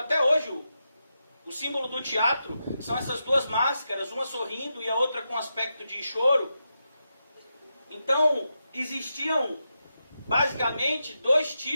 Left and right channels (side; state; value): both; inverted; correlation -0.87